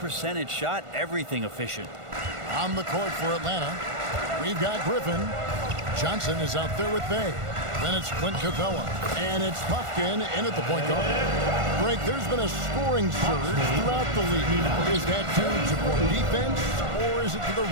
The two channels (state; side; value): late; left; 1.5 ms